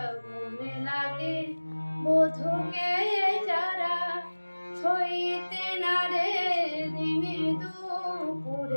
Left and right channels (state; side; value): inverted; both; correlation -1.00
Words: লাগে, বধূকে যারা ছইতে না রে, দিনে